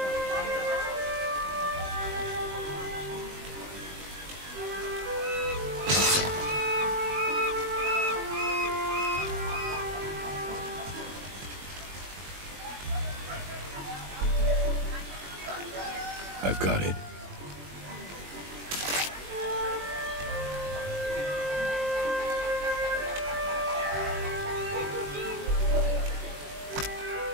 I've got it.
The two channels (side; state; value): left; late; 21 ms